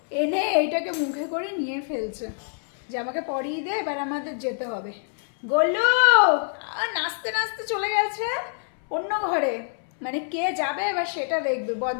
এনে এইটাকে মুখে করে নিয়ে ফেলছে যে আমাকে পরিয়ে দে, এবার আমাদের যেতে হবে। গোলু নাচতে নাচতে চলে গেছে অন্য ঘরে, মানে কে যাবে এবার সেটা দেখবে।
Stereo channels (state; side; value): silent; right; 61 dB below the other